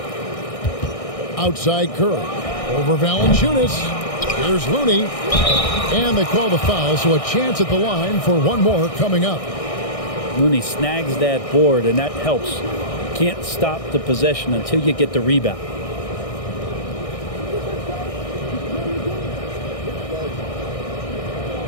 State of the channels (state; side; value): late; right; 1.6 ms